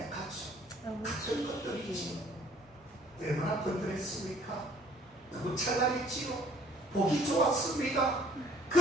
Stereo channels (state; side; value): normal; both; correlation 0.56